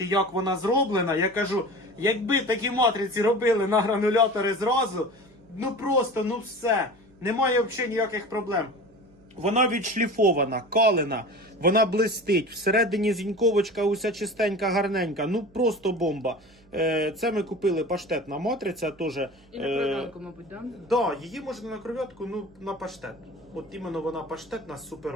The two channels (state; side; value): noise; right; hum, 28 dB below the sound